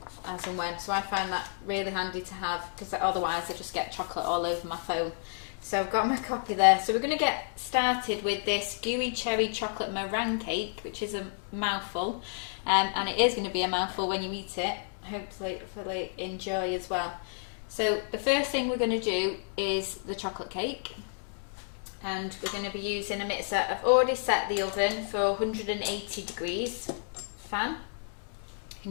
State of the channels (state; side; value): silent; right; digital silence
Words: as and when. So I find that really handy to have, because otherwise I just get chocolate all over my phone. So I've got my copy there. So we're going to get started with this Gooey cherry chocolate meringue cake, which is a mouthful, and it is going to be a mouthful when you eat it. Hopefully enjoy as well. So the first thing we're going to do is the chocolate cake, and we're going to be using a mixer. I've already set the oven for 180 degrees fan. Can